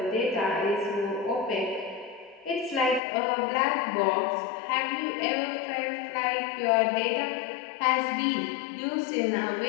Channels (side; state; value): right; drops out; at 3.0 s